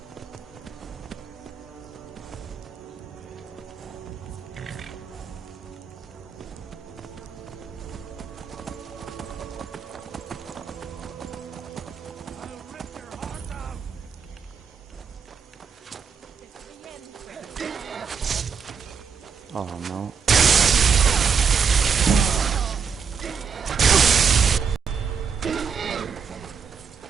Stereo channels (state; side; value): quieter; left; 6.3 dB